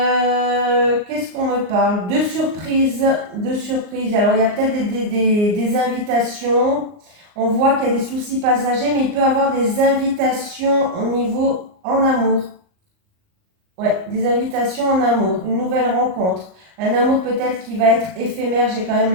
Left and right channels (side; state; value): left; late; 38 ms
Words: qu'on me parle? De surprises, de surprises. Alors il y a peut-être des invitations. On voit qu'il y a des soucis passagers, mais il peut y avoir des invitations au niveau en amour. Ouais, des invitations en amour, une nouvelle rencontre. Un amour peut-être qui va être éphémère, j'ai quand même